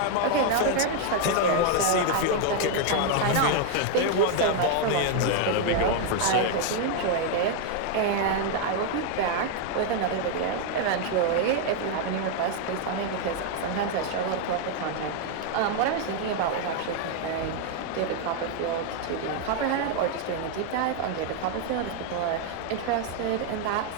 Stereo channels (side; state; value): both; different; correlation 0.00